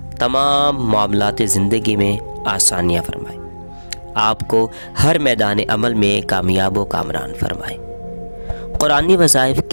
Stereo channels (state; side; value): inverted; both; correlation -1.00